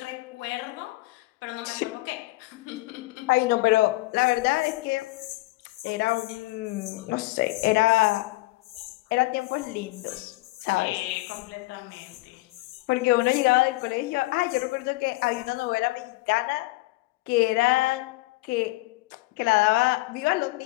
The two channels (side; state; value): right; quieter; 20.7 dB